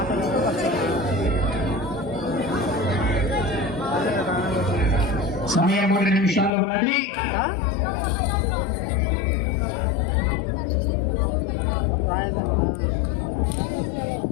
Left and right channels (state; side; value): drops out; right; at 6.5 s